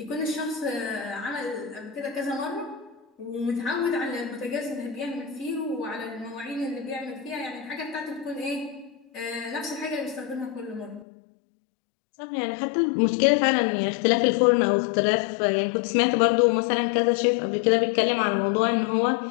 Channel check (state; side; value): drops out; right; at 11.1 s